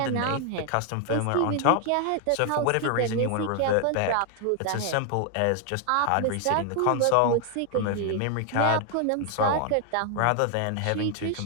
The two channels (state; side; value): different; both; correlation 0.00